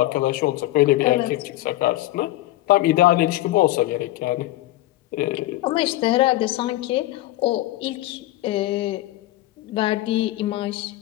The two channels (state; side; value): quieter; right; 16.6 dB